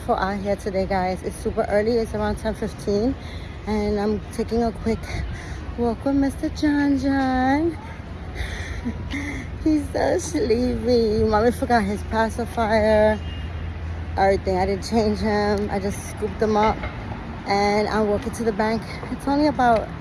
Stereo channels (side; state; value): both; identical; correlation 1.00